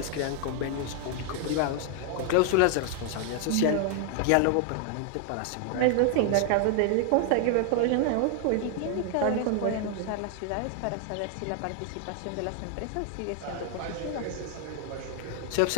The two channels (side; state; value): both; different; correlation 0.00